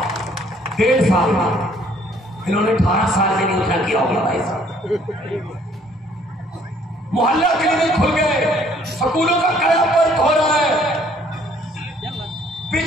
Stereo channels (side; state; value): both; normal; correlation 0.61